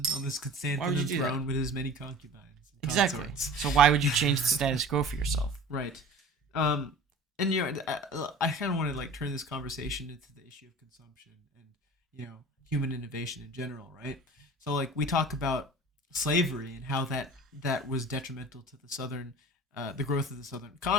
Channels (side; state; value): both; normal; correlation 0.41